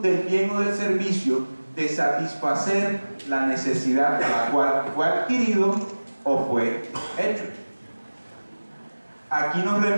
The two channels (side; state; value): both; inverted; correlation -1.00